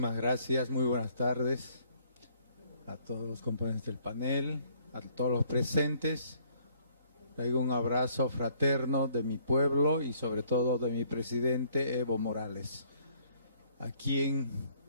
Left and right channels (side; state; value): both; inverted; correlation -0.64